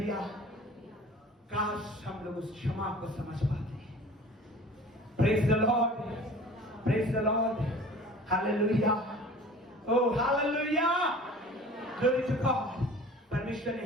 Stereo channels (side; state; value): both; normal; correlation 0.44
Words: काश हम लोग उस क्षमा को समझ पाते हैं। Praise the Lord, praise the Lord, hallelujah, oh hallelujah, glory to God. परमेश्वर ने